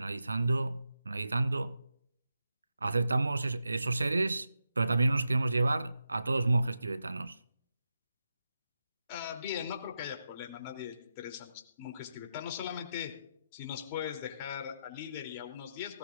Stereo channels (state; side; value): inverted; both; correlation -0.88